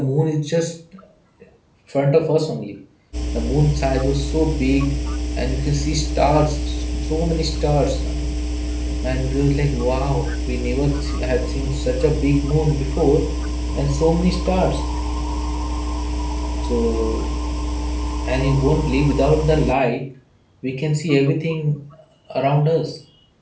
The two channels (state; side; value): identical; both; correlation 1.00